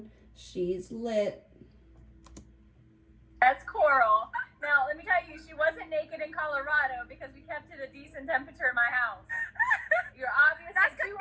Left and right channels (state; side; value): identical; both; correlation 1.00